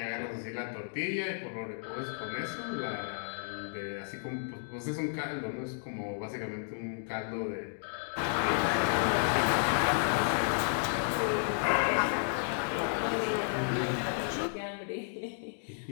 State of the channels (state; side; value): silent; right; digital silence